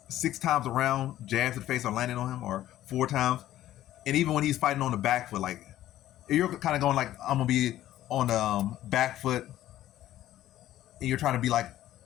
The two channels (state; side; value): quieter; right; 13.4 dB